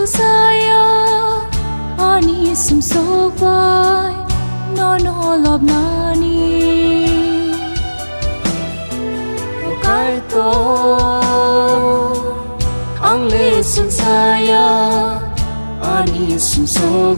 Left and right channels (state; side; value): inverted; both; correlation -1.00